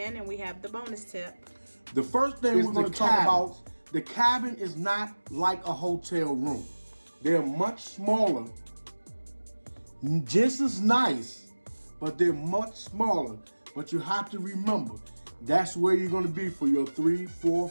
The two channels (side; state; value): both; inverted; correlation -1.00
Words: and we have the bonus tip. The first thing we're going to talk about, the cabin is not like a hotel room. They're much smaller, just as nice, but they're much smaller. But you have to remember, that's where you're going to be for your 3, 4,